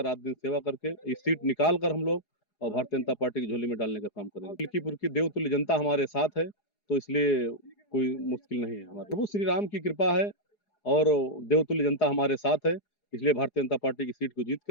रात दिन सेवा करके इस सीट निकाल कर हम लोग और भारतीय जनता पार्टी की झोली में डालने का काम करेंगे। मिल्कीपुर की देवतुल्य जनता हमारे साथ है, तो इसलिए कोई मुश्किल नहीं है। हमारे प्रभु श्री राम की कृपा है और देवतुल्य जनता हमारे साथ है, इसलिए भारतीय जनता पार्टी की सीट को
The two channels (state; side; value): late; right; 4.8 ms